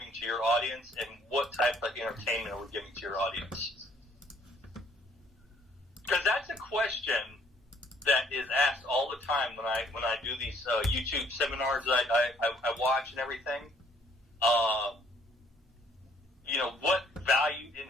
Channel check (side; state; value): both; normal; correlation 0.62